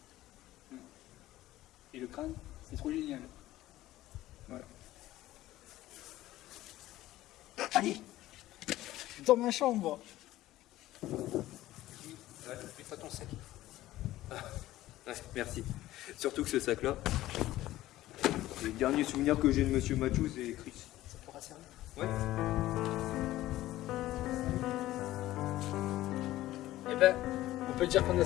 Et le crâne, c'est trop génial. Voilà. Allez, dans ma chambre. Merci. Surtout que ce sac-là, le dernier souvenir que j'ai de Monsieur Mathieu, c'est Chris. Eh ben, on peut dire qu'on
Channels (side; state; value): right; quieter; 15.6 dB